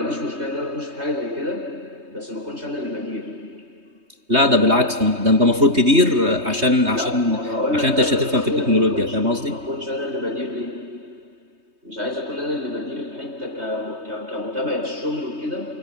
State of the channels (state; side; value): late; left; 3.2 ms